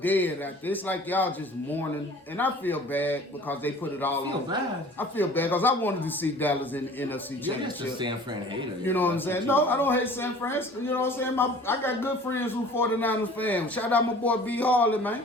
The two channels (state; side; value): normal; both; correlation 0.47